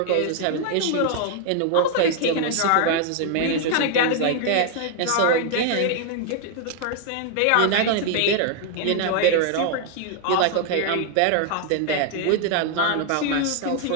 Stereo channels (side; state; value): both; different; correlation 0.00